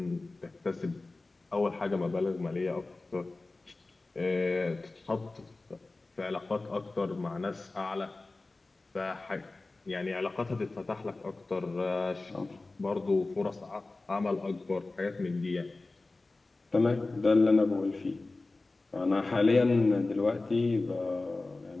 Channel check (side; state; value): right; quieter; 3.3 dB